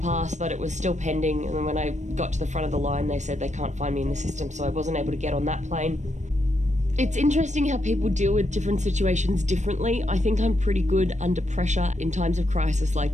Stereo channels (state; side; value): late; left; 0.34 ms